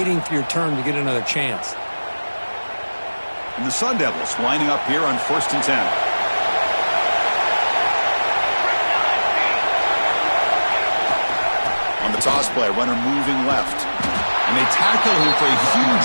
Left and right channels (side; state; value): both; inverted; correlation -1.00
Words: for your turn to get another chance. And the Sun Devils lining up here on 1st and 10. On the toss play, runner moving left. And they tackle him for a